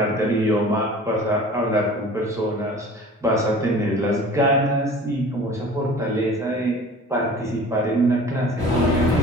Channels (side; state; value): both; normal; correlation 0.44